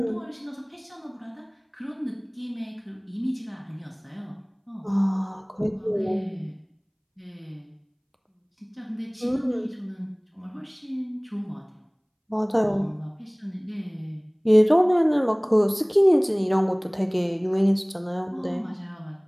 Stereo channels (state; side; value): identical; both; correlation 1.00